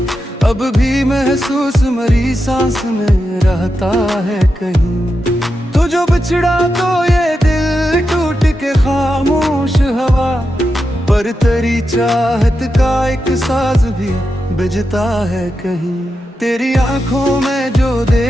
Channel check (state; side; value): normal; both; correlation 0.88